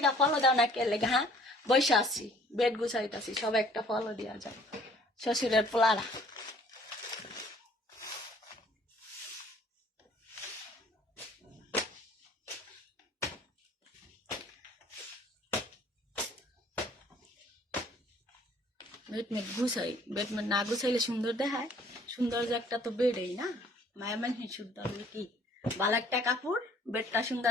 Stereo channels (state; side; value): normal; both; correlation 0.56